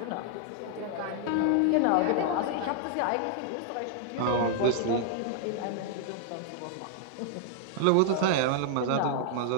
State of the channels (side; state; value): both; different; correlation 0.00